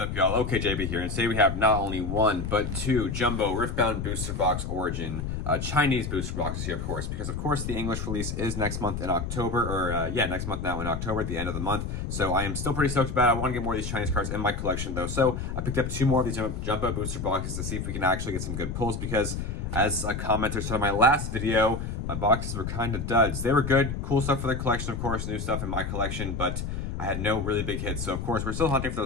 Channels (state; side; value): noise; left; rumble, 4 dB below the sound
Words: y'all? Okay, JB here, and today we have not only one, but two Jumbo Riftbound Booster Box Origin Chinese booster boxes here, of course, because, of course, the English release is next month in October, or, next month now in October, at the end of the month, so I am still pretty stoked about it. I want to get more of these Chinese cards in my collection, though, so I picked up two more of these Jumbo booster boxes to see if we can actually get some good pulls, because, as a commenter said in my last video, my boxes were kind of duds. They were good, cool stuff for the collection, of course, new stuff in my collection, but I had no really big hits, so of course we're still hunting for